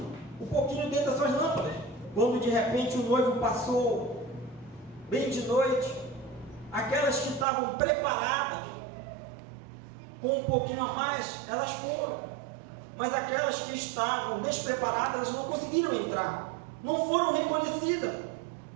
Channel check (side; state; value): left; drops out; at 7.5 s